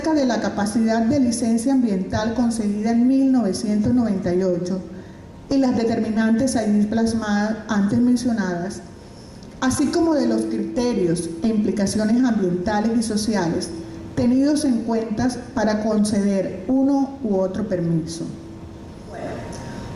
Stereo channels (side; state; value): both; identical; correlation 1.00